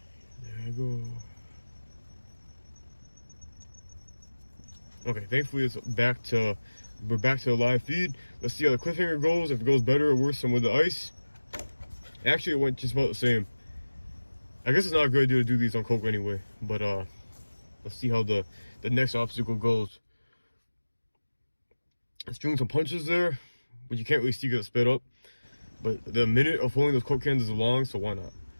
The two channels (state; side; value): inverted; both; correlation -1.00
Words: there I go. Okay, thankfully we're back to the live feed. Let's see how the cliffhanger goes, if it goes better or worse than with the ice. Actually, it went just about the same. I guess it's not a good idea to do these on Coke anyway, but let's see how the next obstacle goes. It's doing some punches there, but you can't really see because it's sped up. But the minute of holding those Coke cans is long, so why not?